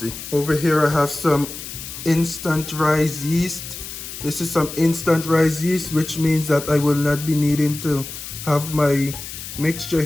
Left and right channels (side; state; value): left; noise; hiss, 10 dB below the sound